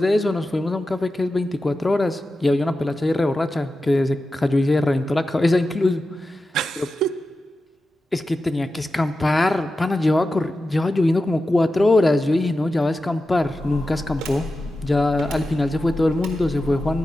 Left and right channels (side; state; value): both; normal; correlation 0.92